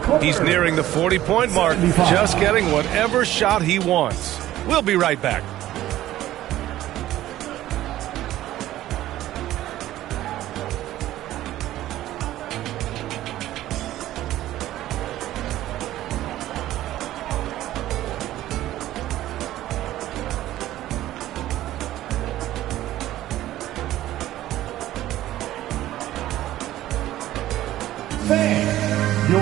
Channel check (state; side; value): quieter; left; 14.2 dB